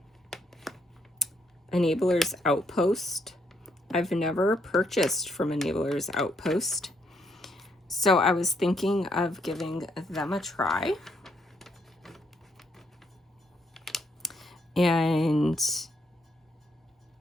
Enabler's Outpost. I've never purchased from Enabler's Outpost, so I was thinking of giving them a try. And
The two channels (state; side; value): normal; both; correlation 0.74